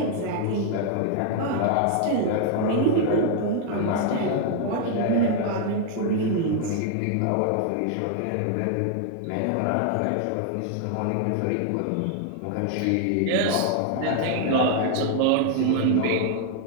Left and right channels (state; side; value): different; both; correlation 0.00